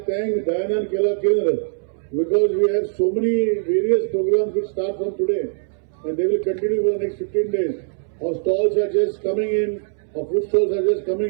thank Dyanan Kela Kendra because we have so many various programs which start from today and they will continue for the next 15 days. Our stalls are just coming in, our food stalls are just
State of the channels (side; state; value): left; silent; 65 dB below the other